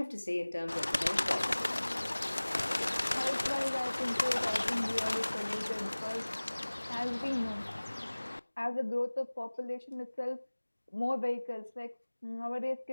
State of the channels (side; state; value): both; inverted; correlation -1.00